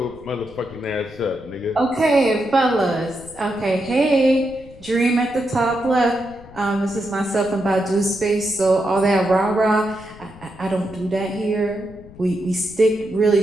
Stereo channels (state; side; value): noise; left; rumble, 21 dB below the sound